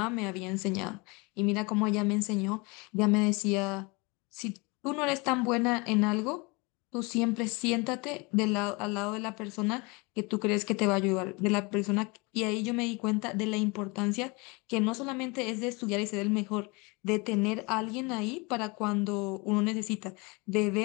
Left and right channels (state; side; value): quieter; right; 27.8 dB